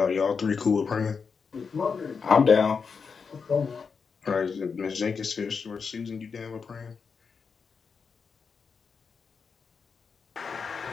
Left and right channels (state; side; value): quieter; right; 5.6 dB